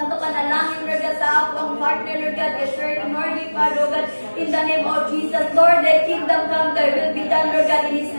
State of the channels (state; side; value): inverted; both; correlation -1.00